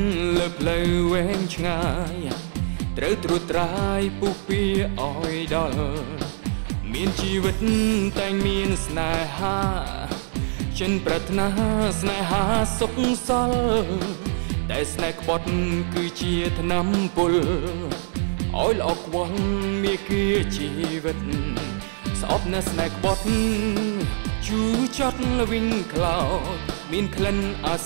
លើផ្លូវវែងឆ្ងាយត្រូវត្រួតត្រាយពុះពៀឲ្យដល់មានជីវិតតែមានស្នេហាចិនប្រាថ្នាស្នេហាសុខសល់តែស្នេហ៍ក្បត់គឺជាថ្នាំពុលឲ្យល្អខ្វល់មានគៀជីវិតស្អប់នៅស្នេហ៍ក្បត់ជូរចត់វិញក្លោមានក្លិនអា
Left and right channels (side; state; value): left; silent; 63 dB below the other